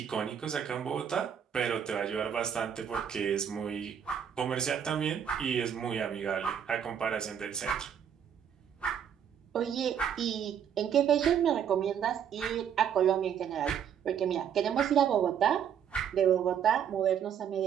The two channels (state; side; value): quieter; left; 8.5 dB